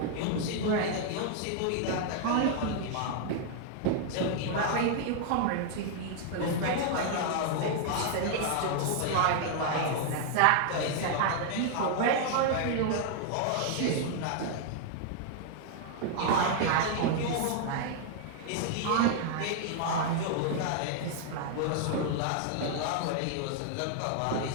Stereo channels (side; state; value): both; different; correlation 0.00